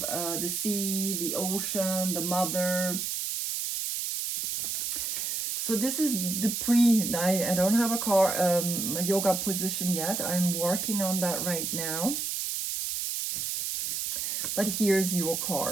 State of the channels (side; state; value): right; noise; hiss, 2 dB below the sound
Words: the sea, the ocean, the mother. So this is the I don't have a yoga position yet. I'm working on that right now. But here's your